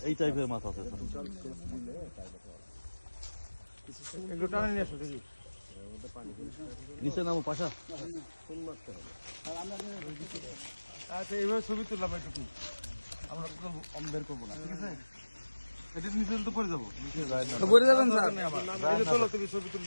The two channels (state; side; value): inverted; both; correlation -1.00